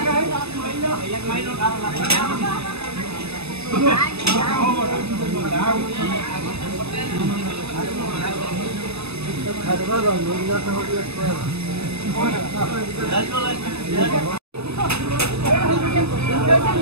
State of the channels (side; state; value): left; late; 0.79 ms